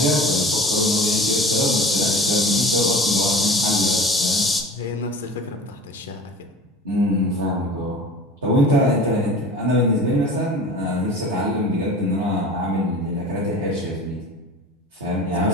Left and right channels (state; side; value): normal; both; correlation 0.39